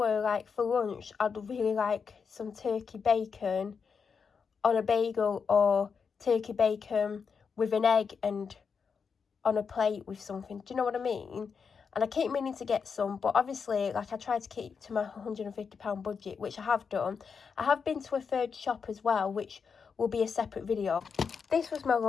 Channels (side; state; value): right; quieter; 5.9 dB